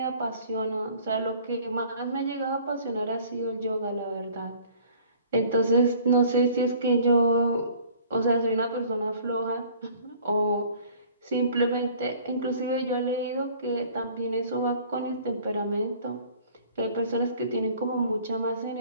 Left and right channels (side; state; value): both; inverted; correlation -0.51